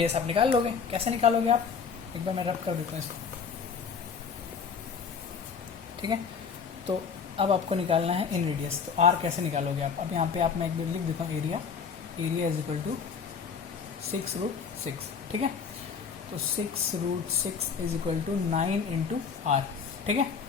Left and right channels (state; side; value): quieter; right; 6.1 dB